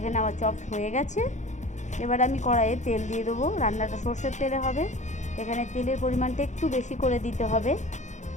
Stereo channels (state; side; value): late; right; 0.35 ms